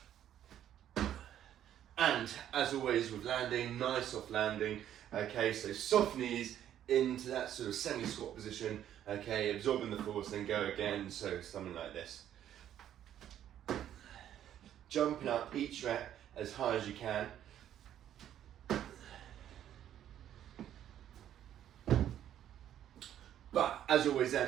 And as always with landing, nice soft landing. Okay, so soft knees into that sort of semi-squat position, okay, absorbing the force, then go again, so something like this. Jumping up each rep as high as you can. But as always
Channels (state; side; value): quieter; left; 10.9 dB